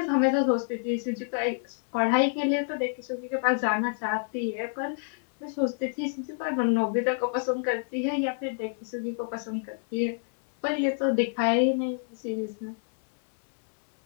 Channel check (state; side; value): silent; right; 59 dB below the other